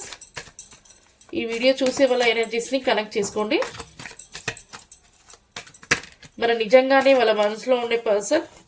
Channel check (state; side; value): identical; both; correlation 1.00